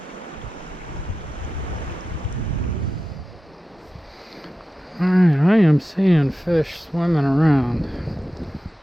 Alright, I am seeing fish swimming around.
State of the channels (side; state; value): both; normal; correlation 0.93